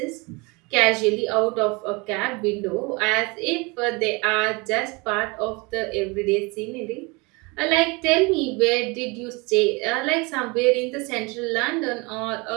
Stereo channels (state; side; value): quieter; left; 27.3 dB